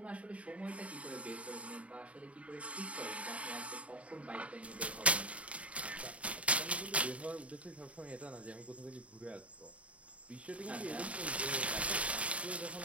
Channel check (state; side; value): late; left; 0.065 ms